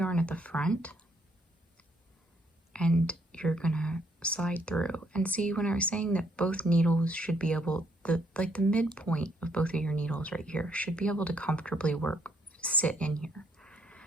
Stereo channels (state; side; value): normal; both; correlation 0.70